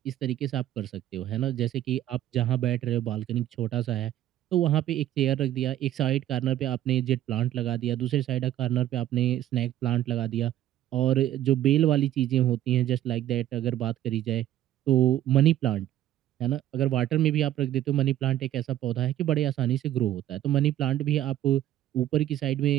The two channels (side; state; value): left; quieter; 12.7 dB